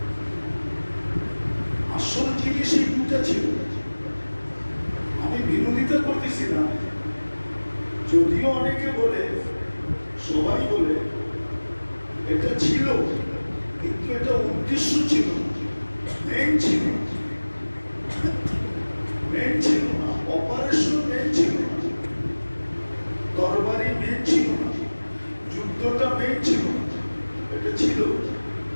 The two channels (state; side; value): inverted; both; correlation -1.00